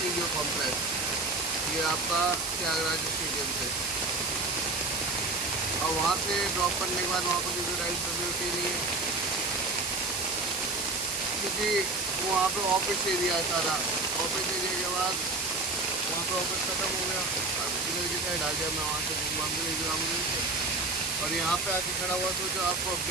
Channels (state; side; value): noise; right; hiss, 2 dB below the sound